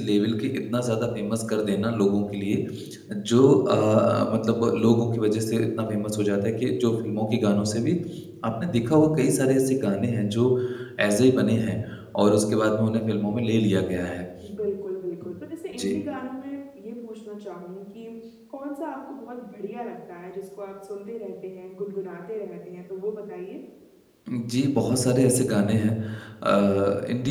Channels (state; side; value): identical; both; correlation 1.00